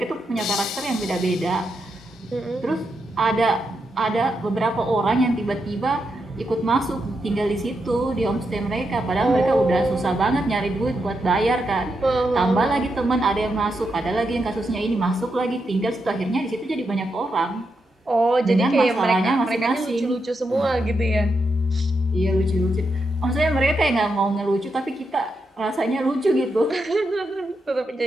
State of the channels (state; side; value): normal; both; correlation 0.84